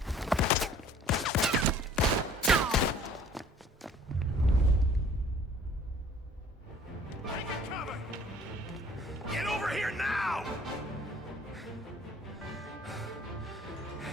Get over here now!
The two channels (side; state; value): both; normal; correlation 0.53